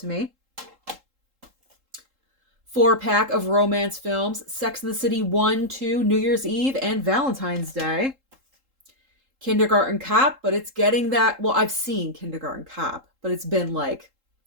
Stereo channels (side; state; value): left; late; 3.7 ms